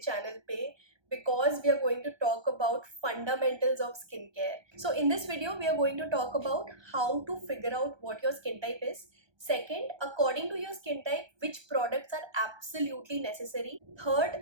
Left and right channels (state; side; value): late; left; 1.2 ms